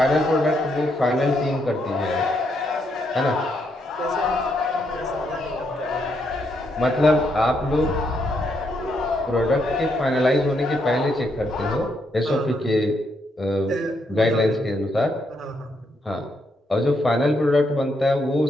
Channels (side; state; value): both; normal; correlation 0.77